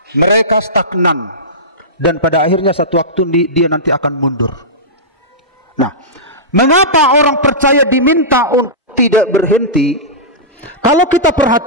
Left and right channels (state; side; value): normal; both; correlation -0.16